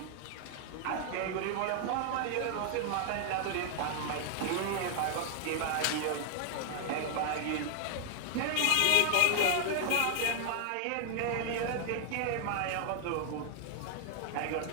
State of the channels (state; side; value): different; both; correlation 0.00